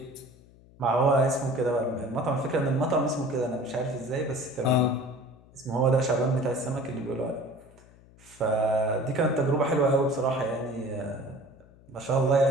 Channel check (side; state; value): left; noise; hum, 25 dB below the sound